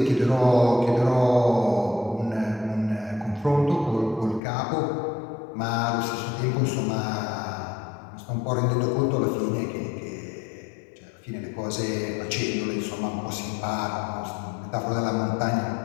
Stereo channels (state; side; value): drops out; right; at 4.4 s